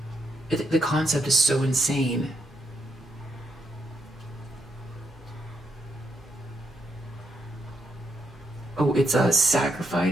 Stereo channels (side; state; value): both; normal; correlation 0.79